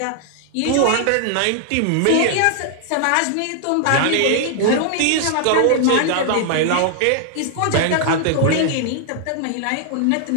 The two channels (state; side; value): different; both; correlation 0.00